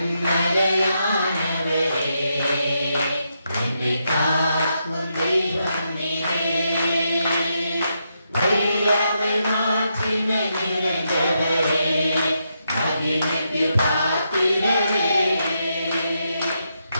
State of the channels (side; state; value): both; inverted; correlation -0.82